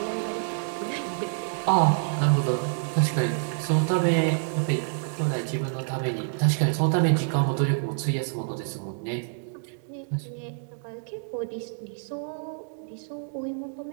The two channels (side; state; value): left; silent; digital silence